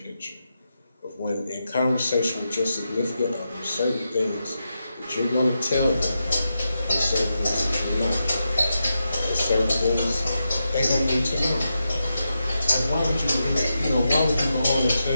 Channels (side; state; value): both; inverted; correlation -0.87